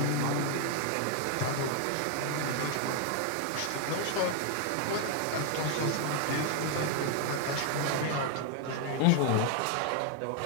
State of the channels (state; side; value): different; both; correlation 0.00